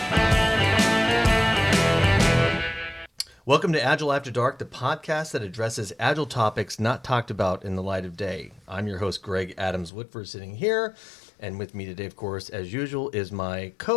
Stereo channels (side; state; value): right; drops out; at 9.9 s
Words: Welcome to Agile After Dark, the podcast that addresses Agile topics not talked about in the light of day. I'm your host, Greg Adams-Whitford, sitting here. And with me today, of course, as usual, is my